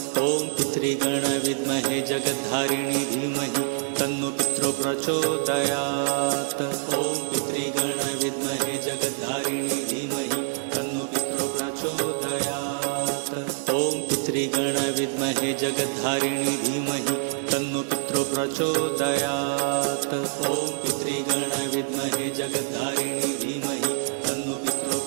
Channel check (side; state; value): left; silent; digital silence